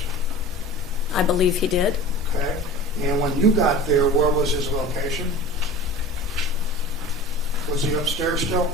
I believe he did. Okay, and when you got there, where was his location? Was he upstairs still?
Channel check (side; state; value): both; normal; correlation 0.36